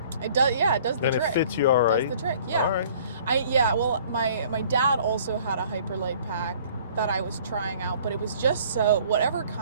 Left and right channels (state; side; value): inverted; both; correlation -0.54